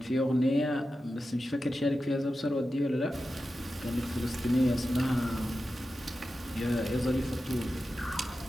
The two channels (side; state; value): both; normal; correlation 0.92